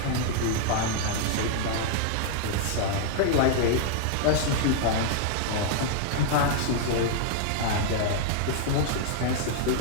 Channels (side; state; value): both; different; correlation -0.01